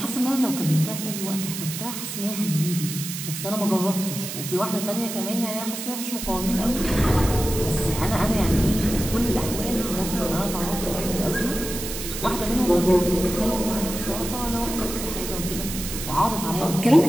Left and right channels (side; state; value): right; noise; hiss, 7 dB below the sound